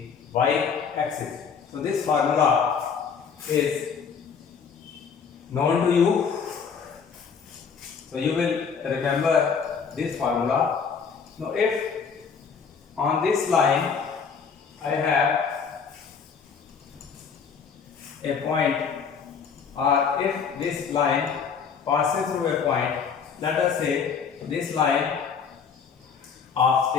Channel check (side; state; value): right; quieter; 6.2 dB